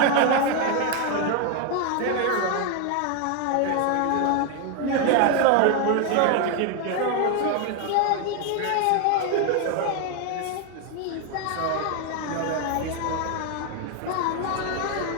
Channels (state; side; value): different; both; correlation 0.01